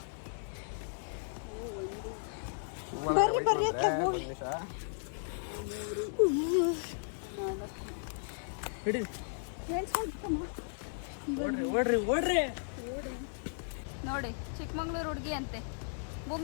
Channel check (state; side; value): silent; right; digital silence